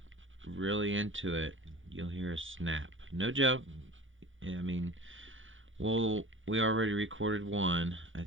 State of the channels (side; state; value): left; late; 0.57 ms